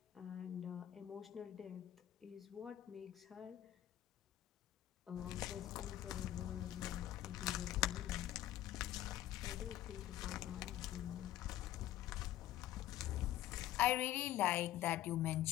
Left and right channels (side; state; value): right; quieter; 13.3 dB